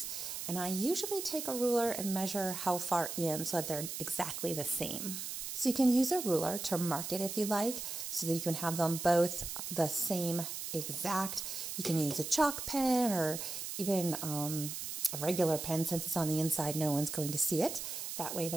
and I usually take a ruler and measure how far in so that they're exactly the same. So you can use a ruler to mark it if you like, so that you can have them both the same exact. You can use a chalk pen or even a regular pen. Since it's on the inside, no one's going to see it. That way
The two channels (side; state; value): right; noise; hiss, 6 dB below the sound